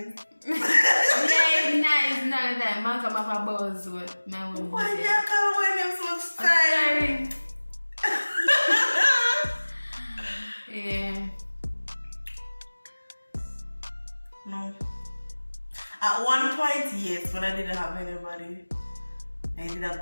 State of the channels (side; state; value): both; inverted; correlation -1.00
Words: Yeah, it's nice. None of that. Man come off a buzz with my one. Why do you call my name so much time? Yeah. No. At one point, yes, when I didn't have anybody, I didn't